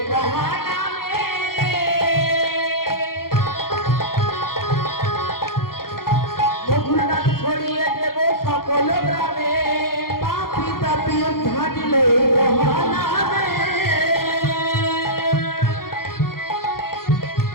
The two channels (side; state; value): right; late; 0.92 ms